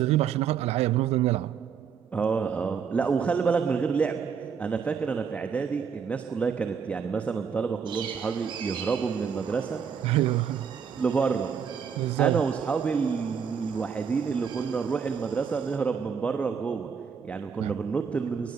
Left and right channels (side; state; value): left; quieter; 6.7 dB